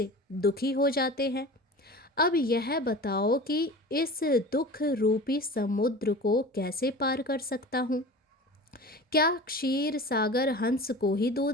दुखी हो जाते हैं। अब यह बताओ कि इस दुख रूपी समुद्र को कैसे पार कर सकता हूँ। क्या क्षीर सागर हंस को ही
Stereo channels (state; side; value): normal; both; correlation 0.36